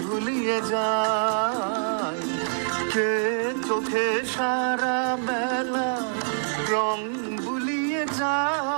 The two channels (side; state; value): left; silent; digital silence